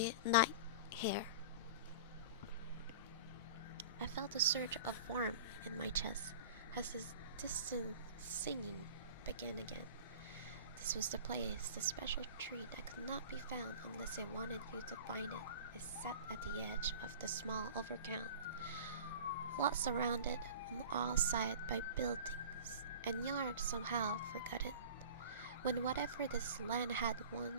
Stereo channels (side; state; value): both; inverted; correlation -0.39